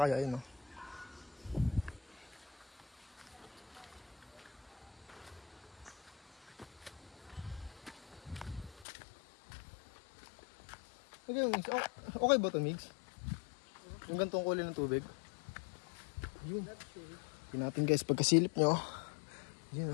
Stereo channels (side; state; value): right; drops out; at 8.8 s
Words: kaya yun, no? Okay, Migs. Okay ba ito, Migs? Yung gantong kulay ng tubig. Yun. Tingnan natin guys, pagkasilip nyo. Yun,